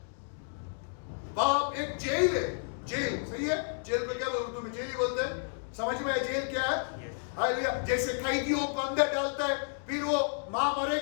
पाप एक जेल है। जेल, सही है? जेल को क्या बोलते, उर्दू में जेल ही बोलते हैं। समझ में आया जेल क्या है? हालेलुया। जैसे कैदियों को अंदर डालता है, फिर वो मां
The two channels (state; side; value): silent; right; digital silence